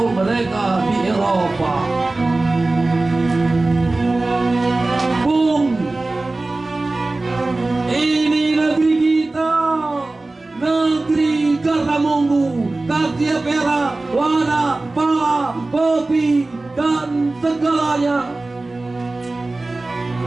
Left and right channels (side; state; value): left; quieter; 3.1 dB